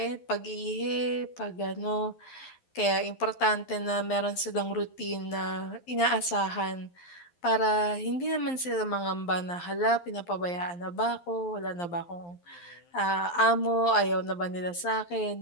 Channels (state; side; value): late; right; 11 ms